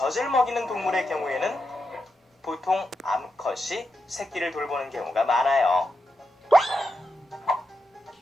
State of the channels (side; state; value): both; normal; correlation 0.86